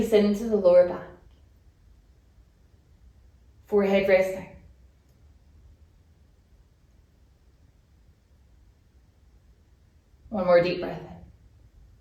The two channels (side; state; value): both; identical; correlation 1.00